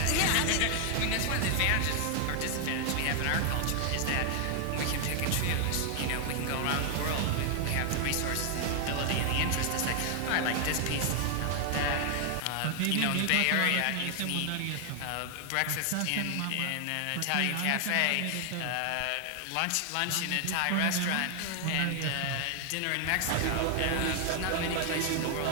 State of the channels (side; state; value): both; different; correlation 0.00